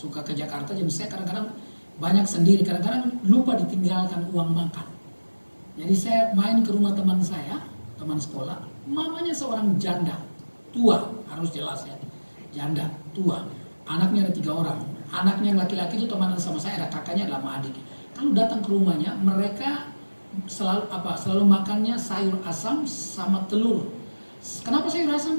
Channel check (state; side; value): inverted; both; correlation -1.00